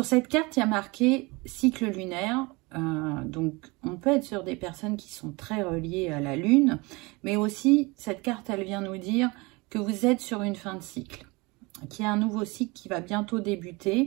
cette carte, il y a marqué cycle lunaire. Donc, on peut être sur des personnes qui sont très reliées à la lune, mais aussi, cette carte, elle vient nous dire que vous êtes sur une fin de cycle, qu'il y a un nouveau cycle qui va bientôt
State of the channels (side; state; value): left; quieter; 25.4 dB